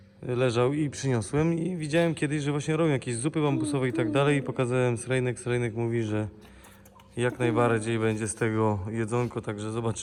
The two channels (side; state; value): both; identical; correlation 1.00